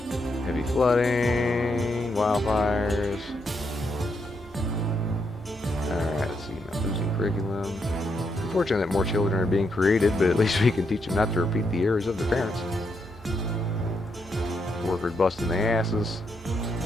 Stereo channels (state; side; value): normal; both; correlation 0.79